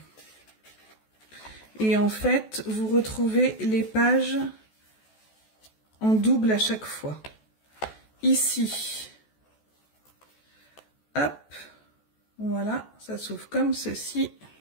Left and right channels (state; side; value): late; right; 14 ms